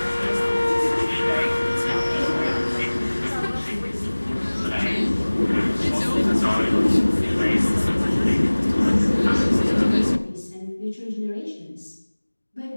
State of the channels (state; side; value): inverted; both; correlation -1.00